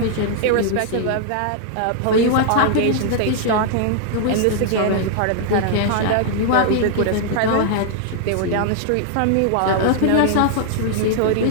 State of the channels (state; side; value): different; both; correlation -0.01